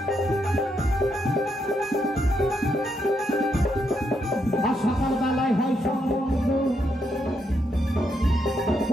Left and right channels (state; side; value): normal; both; correlation 0.79